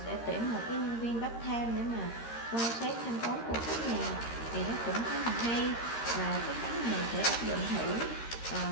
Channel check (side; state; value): right; late; 13 ms